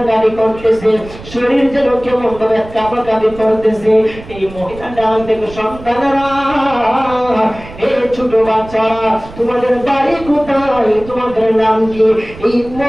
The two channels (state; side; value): noise; right; rumble, 16 dB below the sound